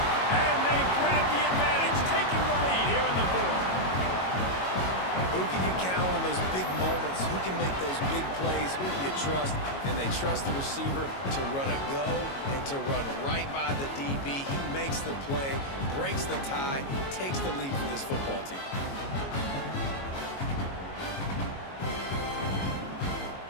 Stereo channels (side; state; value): right; late; 22 ms